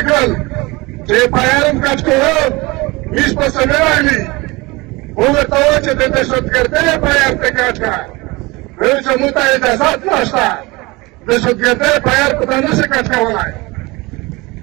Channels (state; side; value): quieter; left; 23.5 dB